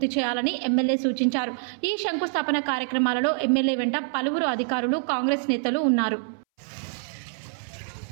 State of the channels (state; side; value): silent; left; 61 dB below the other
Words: చేయాలని ఎమ్మెల్యే సూచించారు. ఈ శంకుస్థాపన కార్యక్రమాలలో ఎమ్మెల్యే వెంట పలువురు అధికారులు, కాంగ్రెస్ నేతలు ఉన్నారు.